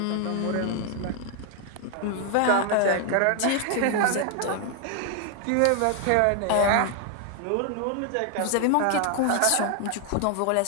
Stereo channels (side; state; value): both; different; correlation 0.00